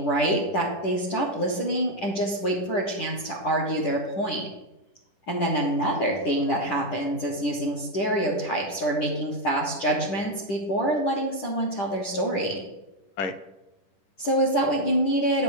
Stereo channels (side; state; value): right; late; 10 ms